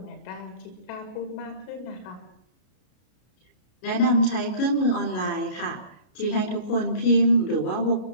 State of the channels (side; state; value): right; late; 33 ms